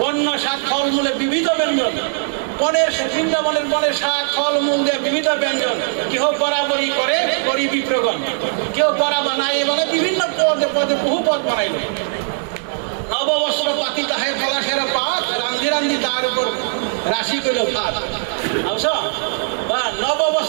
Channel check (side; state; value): left; silent; 65 dB below the other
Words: বন্য শাক ফলমূলে বিবিধ ব্যঞ্জন, বৃন্দাবনের বনের শাক ফলমূল দিয়ে বিবিধ ব্যঞ্জন। কেহ বরাবরই করে করি বিপ্রগণ, কেউ বরা বানায়, মানে বিভিন্ন পদে পদে বহু পদ বানাইল। নববস্ত্র পাতি তাহে পলাশের পাত, রান্ধি রান্ধি তার উপর রাশি কইল ভাত। বুঝছো,